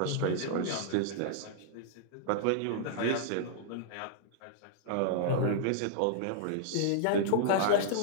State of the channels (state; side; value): different; both; correlation -0.01